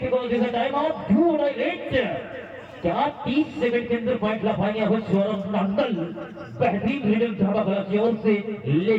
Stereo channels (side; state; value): both; identical; correlation 1.00